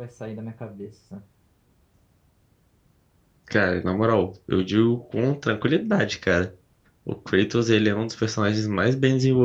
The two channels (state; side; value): identical; both; correlation 1.00